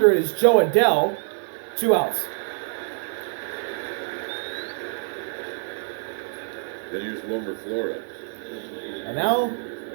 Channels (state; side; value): silent; left; digital silence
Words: it is Joe Adell. 2 outs. Then here's Wilmer Flores. And now